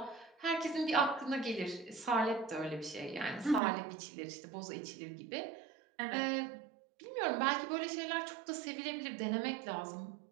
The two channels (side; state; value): left; drops out; at 3.6 s